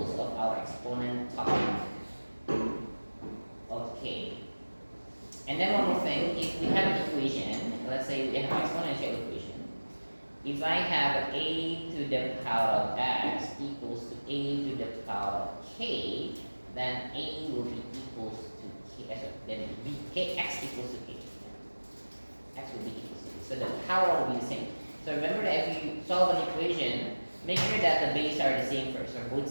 of our exponent topic. Okay. And then one more thing, if we have an equation, let's say we have an exponential equation. If I have a to the power of x equals to a to the power of k, then a will be equals to k. Then x equals to k. X will be equals to k. So the power will be the same. So remember that if you solve an equation, make sure that the base are the same first, or both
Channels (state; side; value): inverted; both; correlation -1.00